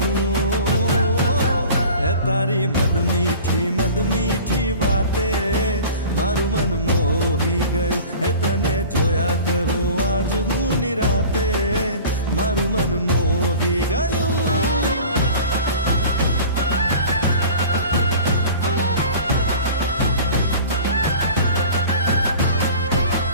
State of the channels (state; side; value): inverted; both; correlation -0.41